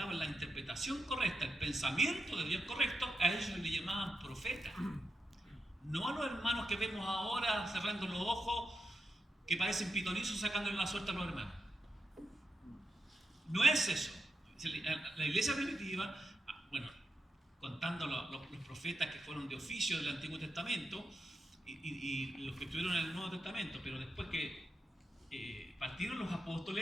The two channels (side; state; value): both; normal; correlation 0.86